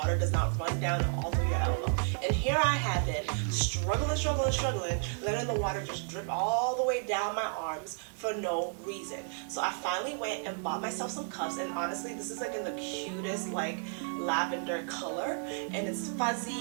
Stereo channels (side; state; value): left; silent; 56 dB below the other